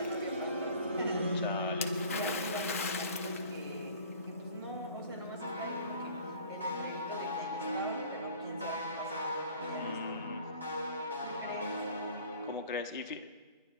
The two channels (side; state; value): both; inverted; correlation -0.48